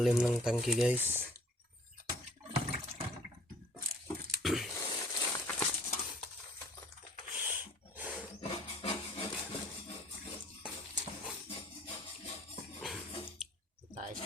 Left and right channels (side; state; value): both; normal; correlation 0.55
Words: ng tangke guys. Taes